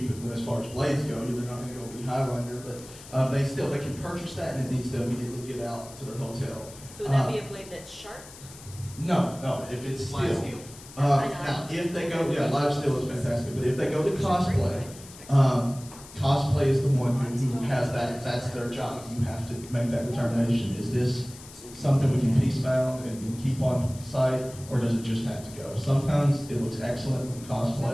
as far as blades go. They're not going to go be Highlander, but they can purchase that, and it needs to immediately get out to their hotel. So would that be a blade that's sharp? No, if it's Live steel. steel. Now, if they go, live steel is fantastic, but if they go to cosplay, cosplay is the one who has that's their job. You have to make that determination. Is this something we can piece bound and keep on site, or does it just have to go? Sometimes it looks excellent with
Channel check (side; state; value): left; noise; hiss, 18 dB below the sound